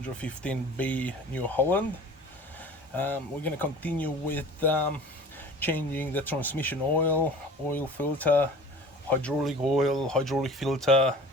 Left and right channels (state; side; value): normal; both; correlation 0.42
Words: New Holland. We're going to continue with changing the transmission oil filter, hydraulic oil, hydraulic filter.